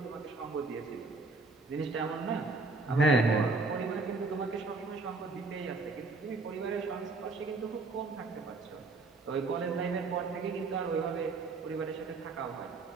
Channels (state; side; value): quieter; left; 3.7 dB